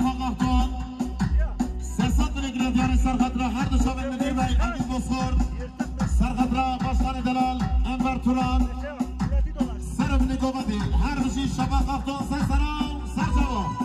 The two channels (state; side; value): identical; both; correlation 1.00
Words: مختار سرسات نگیره دیاری سرخطرا هر دو شامل مدیر بای امید بسخور سرخطرا باشخانه دلال انور توران سرف نگوبتی هر بشی شبا خفتون سر سرام سر